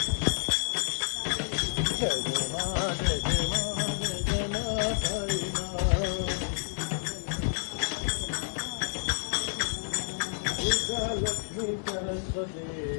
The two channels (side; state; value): right; silent; digital silence